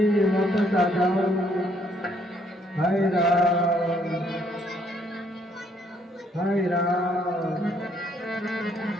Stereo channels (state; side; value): normal; both; correlation 0.68